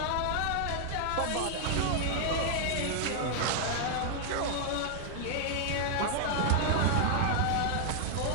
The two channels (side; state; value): both; different; correlation 0.00